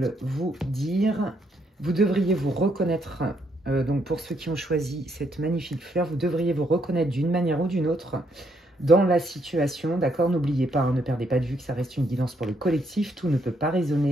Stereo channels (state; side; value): normal; both; correlation 0.74